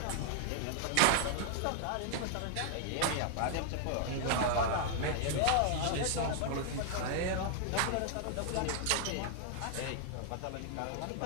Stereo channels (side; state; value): both; different; correlation 0.00